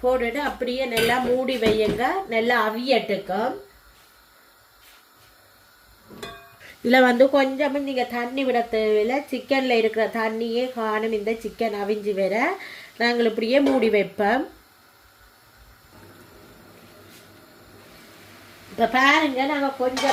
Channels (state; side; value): identical; both; correlation 1.00